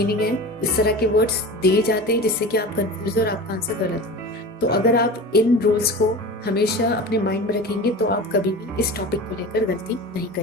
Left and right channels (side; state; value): both; normal; correlation 0.33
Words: है इस तरह के वर्ड्स दिए जाते हैं, जिससे कि आप कंफ्यूज और आपका आंसर गलत हो। तो अगर आप इन रूल्स को हमेशा अपने माइंड में रखेंगे तो आप कभी भी इस टॉपिक को लेकर गलती नहीं